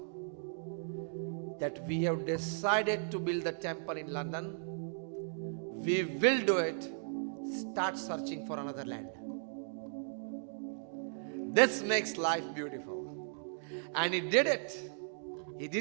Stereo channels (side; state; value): left; silent; digital silence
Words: that we have decided to build the temple in London. We will do it. Start searching for another land. This makes life beautiful. And he did it. He